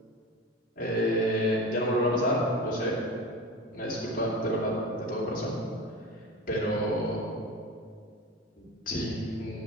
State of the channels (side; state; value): both; normal; correlation 0.30